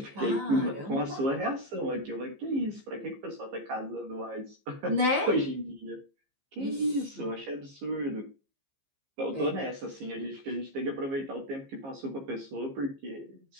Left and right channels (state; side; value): late; left; 15 ms